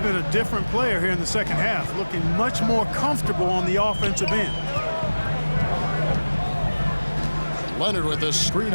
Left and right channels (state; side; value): inverted; both; correlation -1.00